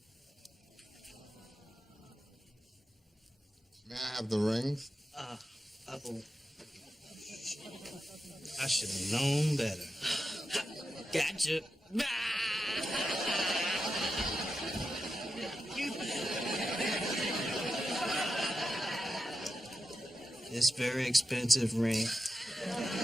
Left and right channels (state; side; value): normal; both; correlation 0.89